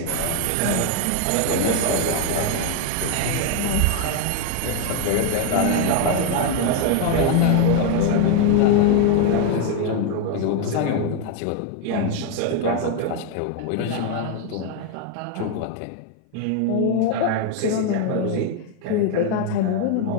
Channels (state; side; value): different; both; correlation 0.01